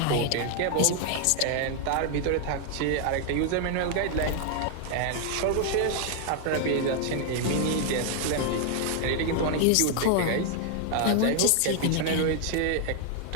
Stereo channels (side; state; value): both; different; correlation 0.00